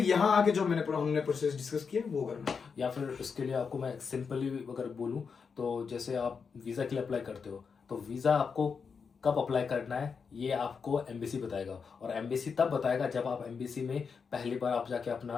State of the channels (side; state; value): right; quieter; 5.8 dB